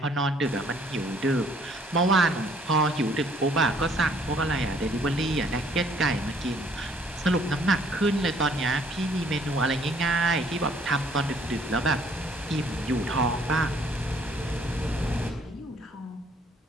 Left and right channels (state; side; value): normal; both; correlation 0.61